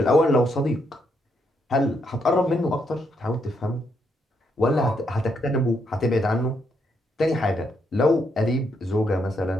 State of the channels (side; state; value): both; normal; correlation 0.77